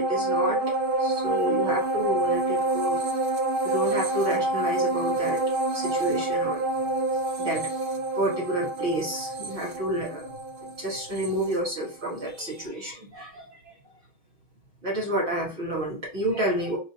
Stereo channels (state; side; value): late; left; 6.4 ms